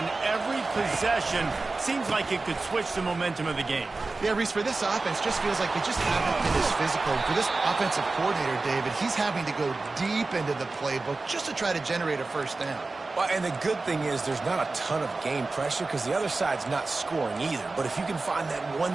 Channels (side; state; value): left; quieter; 3.5 dB